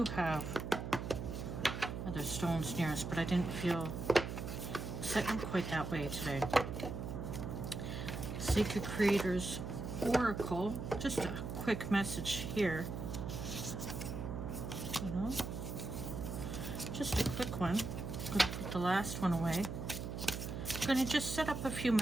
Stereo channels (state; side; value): noise; right; hum, 5 dB below the sound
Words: have other stones near us, but I didn't feel setting quite that way today. Sacred Creators Oracle. Just a quick message here. You know, just a quick one. I'm going to put the last one away. I'm going to just set up a few